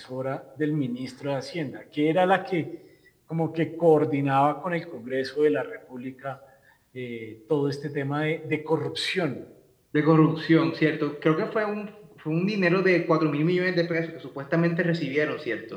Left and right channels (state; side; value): identical; both; correlation 1.00